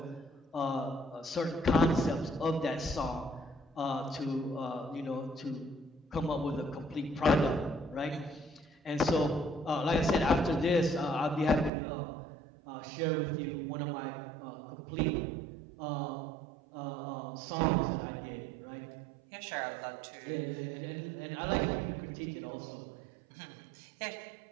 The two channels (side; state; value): left; drops out; at 11.7 s